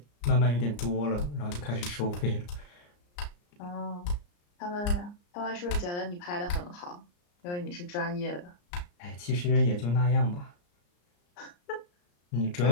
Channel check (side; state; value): right; late; 34 ms